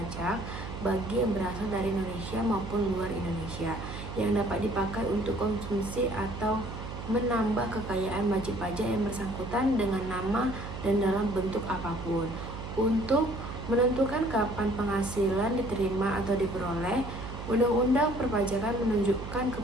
bagi yang berasal dari Indonesia maupun luar Indonesia yang dapat dipakai untuk konsumsi atau menambah kekayaan wajib pajak yang bersangkutan dengan nama dan dalam bentuk apapun. Untuk menentukan kapan penghasilan diterima atau diperoleh, Undang-Undang Perpajakan menunjukkan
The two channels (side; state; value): right; noise; hum, 9 dB below the sound